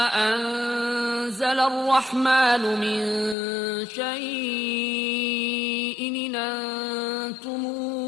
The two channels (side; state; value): right; drops out; at 3.4 s